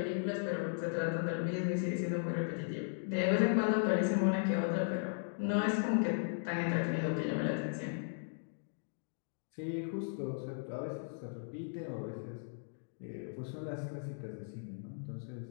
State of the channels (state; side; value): silent; right; digital silence